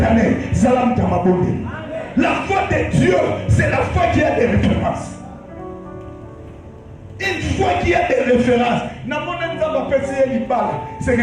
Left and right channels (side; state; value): both; identical; correlation 1.00